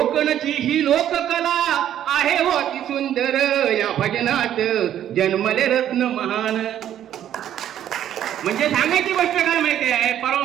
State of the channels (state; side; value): quieter; left; 10.9 dB